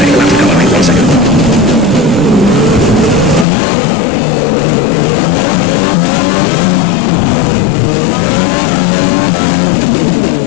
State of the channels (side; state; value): right; drops out; at 3.5 s